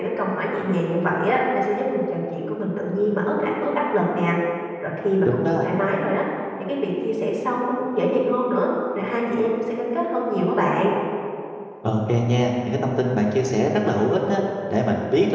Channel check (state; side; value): identical; both; correlation 1.00